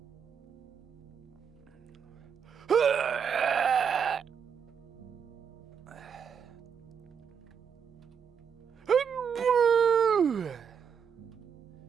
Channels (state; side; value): quieter; left; 7.1 dB